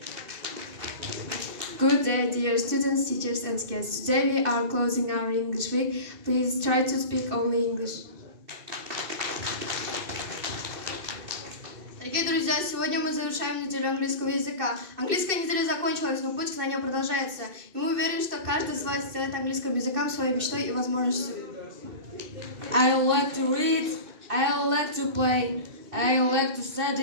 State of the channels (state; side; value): late; left; 2.6 ms